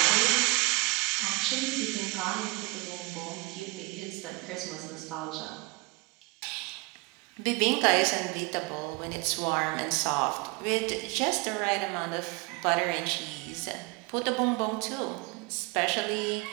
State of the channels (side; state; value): left; quieter; 24.9 dB